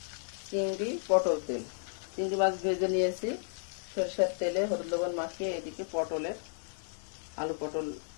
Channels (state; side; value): silent; right; digital silence